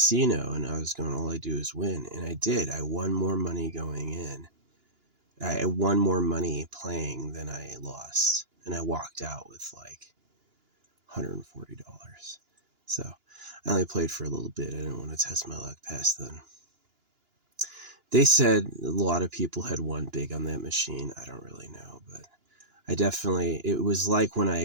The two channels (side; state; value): left; late; 2.9 ms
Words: and I was going, all I do is win. And I did. I won more money going in. I won more money playing than I lost. And I walked out with like $140. So I only played for a little bit. I didn't want to test my luck past then. They said a lot of people had won big on that machine. I don't really know, but it was like when